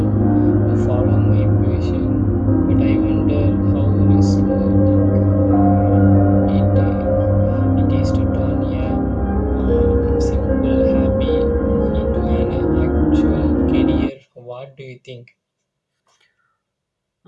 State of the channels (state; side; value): identical; both; correlation 1.00